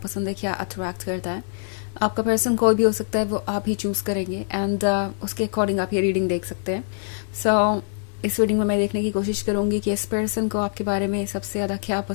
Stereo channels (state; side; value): silent; right; digital silence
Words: पसंद है, क्या अट्रैक्ट करता है। आपका पर्सन कोई भी हो सकता है, वो आप ही चूज़ करेंगे एंड उसके अकॉर्डिंग आप ये रीडिंग देख सकते हैं। सो इस रीडिंग में मैं देखने की कोशिश करूंगी कि इस पर्सन को आपके बारे में सबसे ज़्यादा क्या